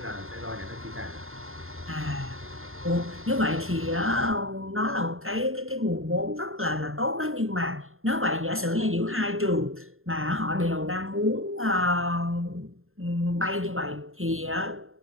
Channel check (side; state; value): left; late; 0.61 ms